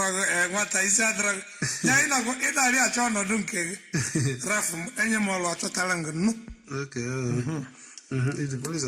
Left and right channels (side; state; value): both; identical; correlation 1.00